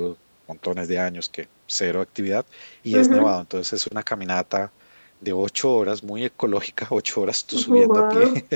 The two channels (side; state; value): both; inverted; correlation -1.00